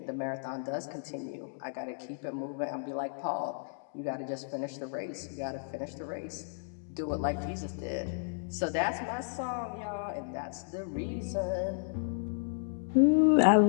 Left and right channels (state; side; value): silent; right; digital silence